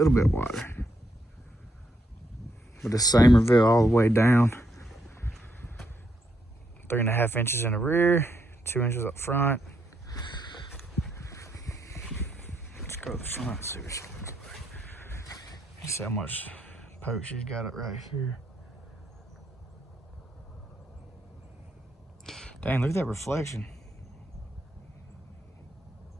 But the same reveal all the way down. 3.5 inches in the rear, 2 inches up front. Let's go to the front, see what she looks like. You see how much poke she's got it right here. Dang, look at that reflection.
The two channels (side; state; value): both; normal; correlation 0.77